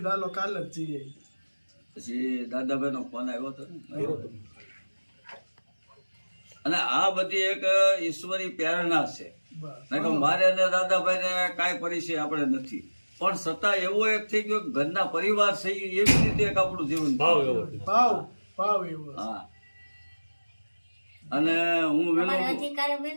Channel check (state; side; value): inverted; both; correlation -1.00